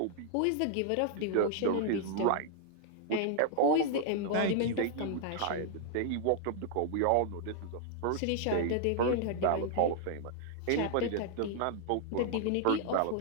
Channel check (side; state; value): both; different; correlation -0.01